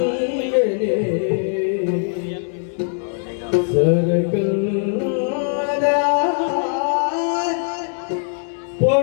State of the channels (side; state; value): right; silent; digital silence